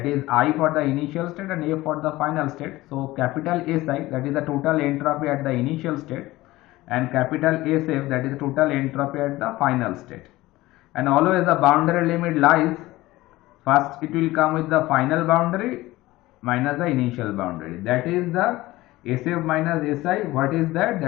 is I for the initial state and f for the final state. So capital Si, that is the total entropy at the initial state, and capital SF, that is the total entropy at the final state. And always the boundary limit lies, first it will come with the final boundary minus the initial boundary, that is the SF minus Si. What is that?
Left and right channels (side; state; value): right; quieter; 18.3 dB